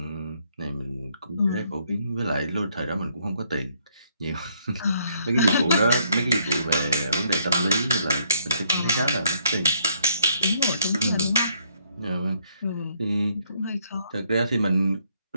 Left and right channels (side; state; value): both; inverted; correlation -0.70